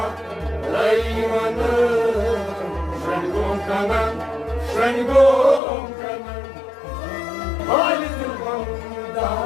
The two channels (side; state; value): right; drops out; at 5.6 s